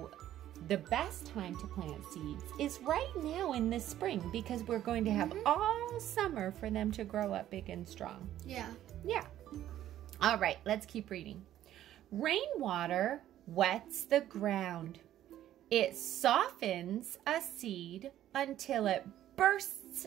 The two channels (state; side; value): quieter; left; 12.3 dB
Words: the best time to plant seeds is right now in the spring because we're going to have all summer for them to grow up big and strong. Yeah. Yeah. All right, let's keep reading. Rainwater wets the ground. It softens a seed until it bursts